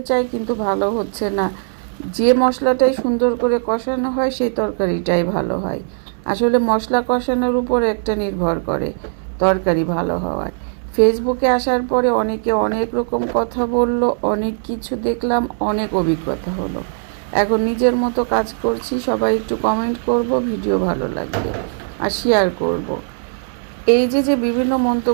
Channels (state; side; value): silent; left; 66 dB below the other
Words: চাই কিন্তু ভালো হচ্ছে না। যে মশলাটাই সুন্দর করে কষানো হয় সেই তরকারিটাই ভালো হয়। আসলে মশলা কষানোর উপর একটা নির্ভর করে তরকারি ভালো হওয়ার। ফেসবুকে আসার পরে অনেকে অনেক রকম কথা বলল, অনেক কিছু দেখলাম, অনেক অভিজ্ঞতা হলো। এখন নিজের মতো কাজ করছি। সবাই একটু কমেন্ট করব ভিডিও ভালো লাগলে, আর শেয়ার করব। এই যে বিভিন্ন